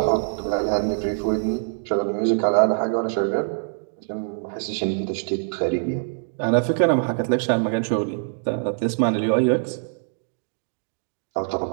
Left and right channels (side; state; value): left; silent; digital silence